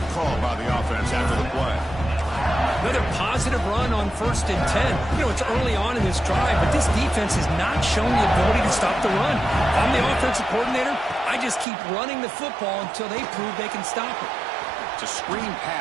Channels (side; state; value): left; drops out; at 11.7 s